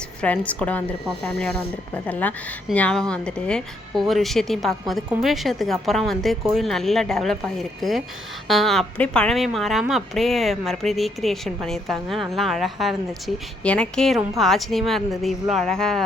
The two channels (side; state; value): both; normal; correlation 0.73